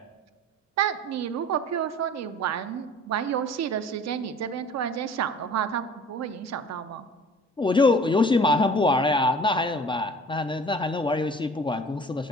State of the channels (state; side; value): normal; both; correlation 0.46